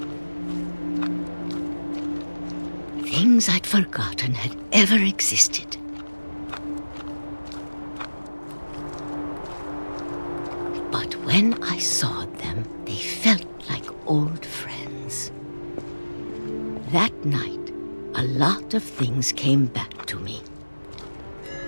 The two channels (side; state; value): both; inverted; correlation -1.00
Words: Things I'd forgotten had ever existed. But when I saw them, they felt like old friends. That night, a lot of things came back to me.